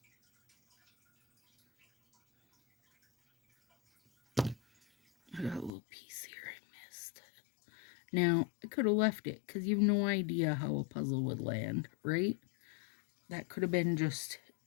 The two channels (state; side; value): drops out; right; at 5.7 s